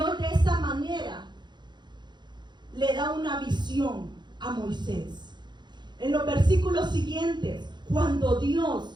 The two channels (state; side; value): late; left; 0.21 ms